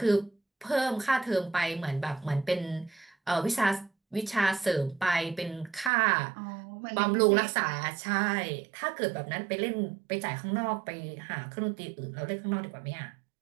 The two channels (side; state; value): left; drops out; at 5.9 s